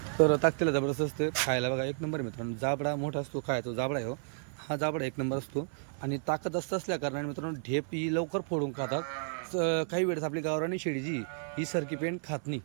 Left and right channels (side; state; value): left; silent; 56 dB below the other